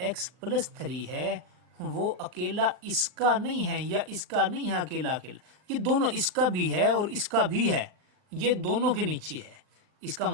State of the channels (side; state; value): left; late; 39 ms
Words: + 3 है वो अकेला इसका नहीं है या इसका नहीं है अकेला अकेला, ये दोनों, इसका भी है और इसका भी है, ये दोनों के नीचे है। इसका